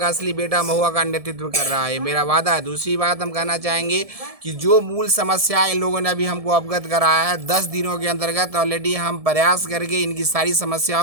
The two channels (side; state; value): left; late; 1.7 ms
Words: असली बेटा महुआ का नेतृत्व कर रहा है। मेरा वादा है। दूसरी बात हम कहना चाहेंगे कि जो मूल समस्या इन लोगों ने अभी हमको अवगत कराया है, 10 दिनों के अंतर्गत ऑलरेडी हम प्रयास करके इनकी सारी